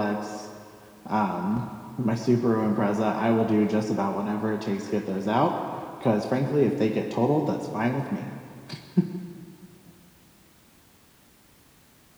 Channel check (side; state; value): both; identical; correlation 1.00